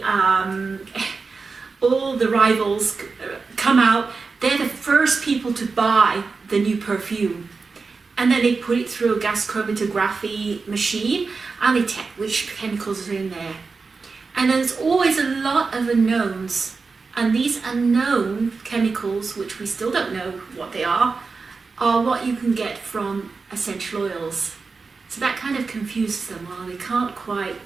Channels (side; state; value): left; quieter; 4.5 dB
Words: rivals come out. They're the first people to buy the new perfume, and then they put it through a gas chromatography machine and they check which chemicals are in there. And there's always a lot of unknowns, and these unknown chemicals, which we still don't know what they are what you can get from essential oils. So that kind of confuses them. Well, they can't quite